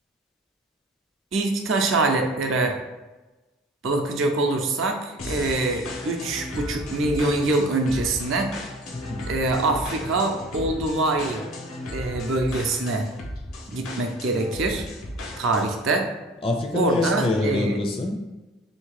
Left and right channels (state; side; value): normal; both; correlation 0.43